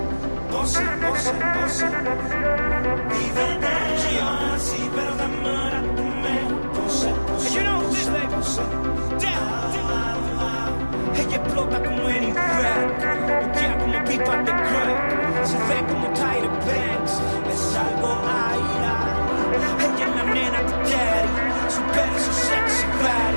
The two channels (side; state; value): both; inverted; correlation -1.00